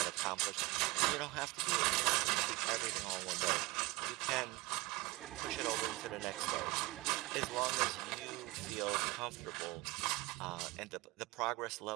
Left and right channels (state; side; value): quieter; left; 21.6 dB